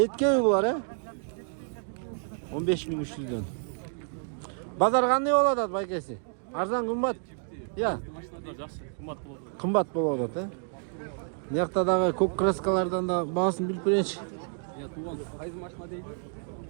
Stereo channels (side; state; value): left; silent; 58 dB below the other